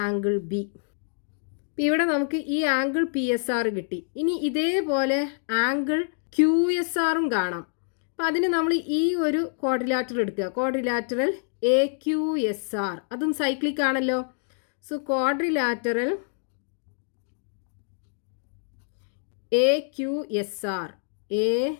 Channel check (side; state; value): right; silent; digital silence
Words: B. ഇവിടെ നമുക്ക് ഈ angle PSR കിട്ടി. ഇനി ഇതേപോലെ ആംഗിൾ QSRും കാണാം. അപ്പോൾ അതിന് നമ്മൾ ഈ ഒരു ക്വാഡ്രിലാറ്ററൽ എടുക്കുക. ക്വാഡ്രിലാറ്ററൽ AQSR, അതും സൈക്ലിക് ആണല്ലോ. So quadrilateral AQSR